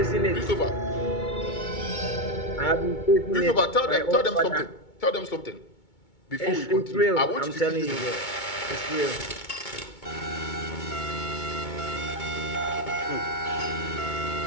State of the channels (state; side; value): late; right; 2.2 ms